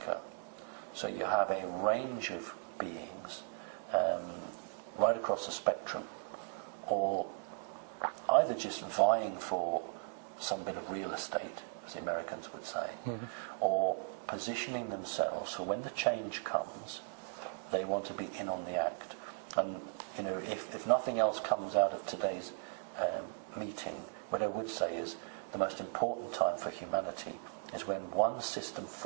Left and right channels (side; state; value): left; silent; digital silence